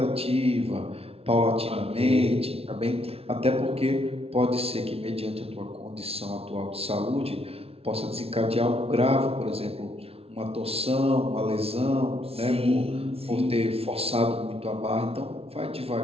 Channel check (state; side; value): late; left; 0.29 ms